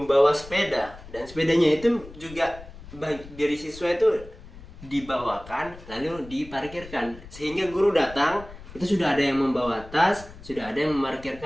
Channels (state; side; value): noise; left; rumble, 17 dB below the sound